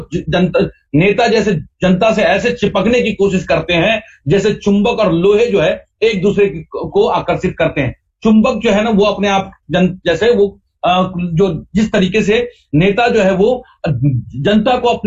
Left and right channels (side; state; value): both; identical; correlation 1.00